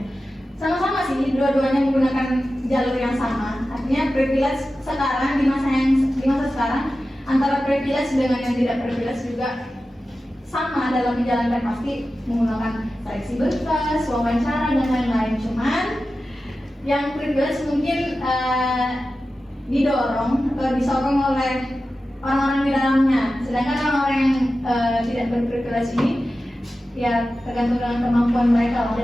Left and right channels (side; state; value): both; normal; correlation 0.93